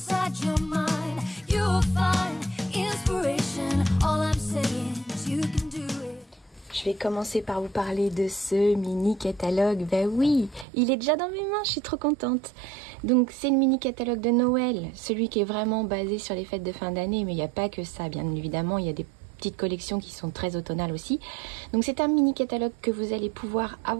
your mind. You'll find inspiration. All I'm saying is you can do it. Je vais commencer par vous parler de ce mini catalogue. Ben oui, il est déjà dans mes mains, je suis trop contente. Donc c'est le mini catalogue de Noël, celui qui est vraiment basé sur les fêtes de fin d'année, mais il n'y a pas que ça, bien évidemment, il y a des petites collections qui sont très automnales aussi. Donc c'est un mini catalogue que vous allez pouvoir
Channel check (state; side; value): drops out; left; at 10.7 s